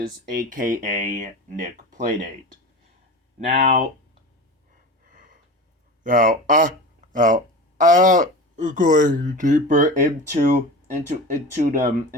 AKA Nick Playdate. Now, now, going deeper into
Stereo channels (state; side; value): normal; both; correlation 0.31